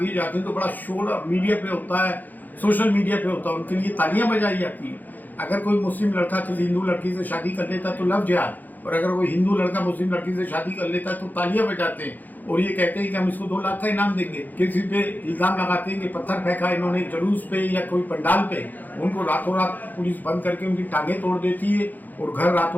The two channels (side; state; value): right; late; 0.084 ms